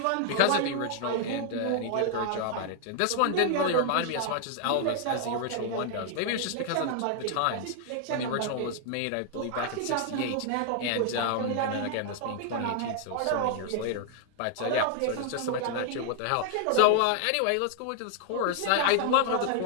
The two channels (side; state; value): both; different; correlation 0.00